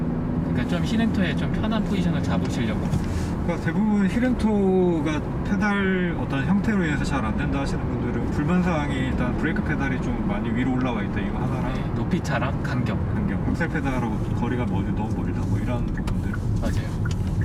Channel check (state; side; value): identical; both; correlation 1.00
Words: 그러니까 좀 힐앤토에 좀 편한 포지션을 잡으시려고. 그러니까 대부분 힐앤토가 페달 어떤 형태로 인해서 잘 안 된다 하시는 분들은 불만사항이 일단 브레이크 페달이 좀 많이 위로 올라와 있다 이거 하나랑 네, 높이 차랑 간격. 악셀 페달하고 거리가 너무 멀다 뭐 이런 부분들. 맞아요.